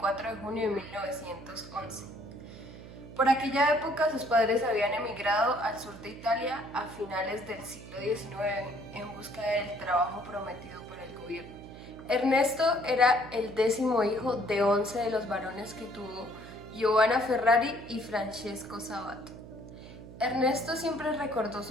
de junio de 1911. Por aquella época sus padres habían emigrado al sur de Italia a finales del siglo XIX en busca del trabajo prometido por el gobierno. Ernesto era el 10º hijo de 11 de los varones que tuvo Giovanna Ferrari y Francesco Sabato. Ernesto siempre recordó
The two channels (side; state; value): right; noise; hum, 15 dB below the sound